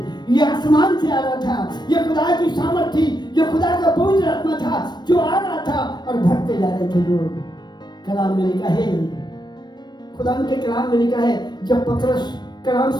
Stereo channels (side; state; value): right; late; 0.21 ms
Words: ये आसमान से आ रहा था। ये खुदा की सामर्थ थी, ये खुदा का पवित्र आत्मा था जो आ रहा था और भरते जा रहे थे लोग। कलाम में लिखा है, खुदा के कलाम में लिखा है जब पतरस कलाम